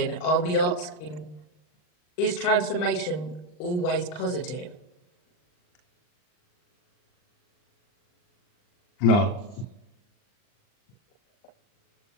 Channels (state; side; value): late; right; 39 ms